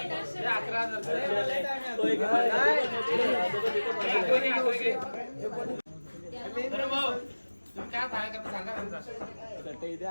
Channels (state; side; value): inverted; both; correlation -1.00